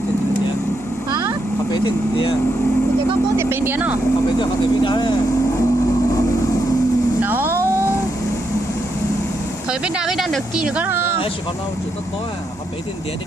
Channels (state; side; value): normal; both; correlation 0.81